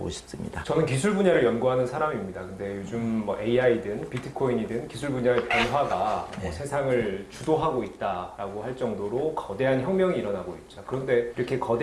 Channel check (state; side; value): identical; both; correlation 1.00